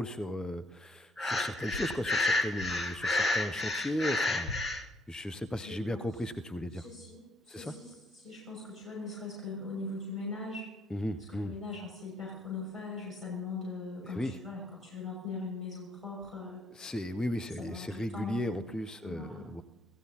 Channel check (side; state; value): both; normal; correlation 0.71